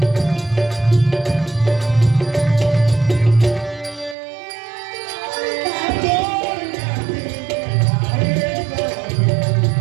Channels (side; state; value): left; drops out; at 4.2 s